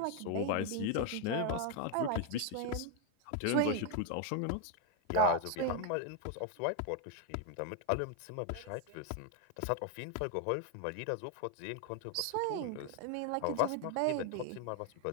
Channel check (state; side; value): different; both; correlation 0.01